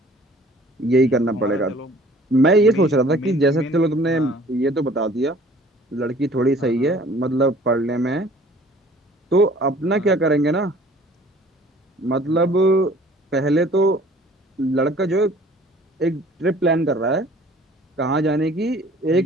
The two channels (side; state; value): both; normal; correlation 0.52